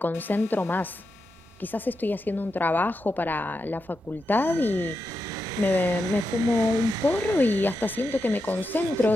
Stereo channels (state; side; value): normal; both; correlation 0.87